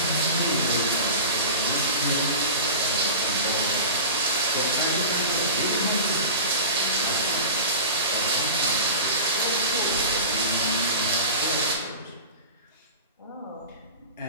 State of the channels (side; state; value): both; inverted; correlation -0.33